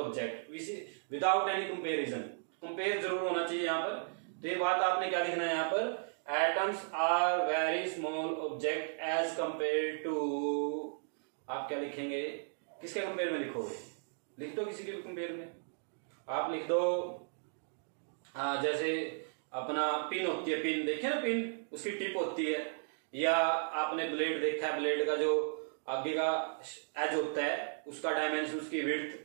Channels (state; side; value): silent; left; digital silence